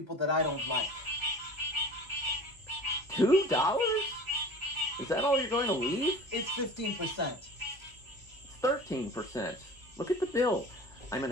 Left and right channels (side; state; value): both; normal; correlation 0.40